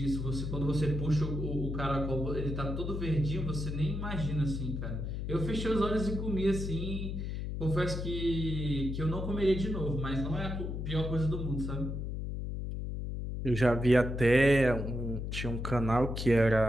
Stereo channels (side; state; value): left; noise; hum, 4 dB below the sound